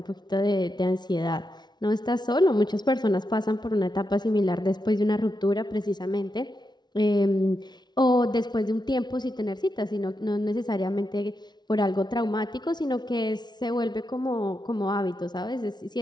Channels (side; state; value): right; late; 0.20 ms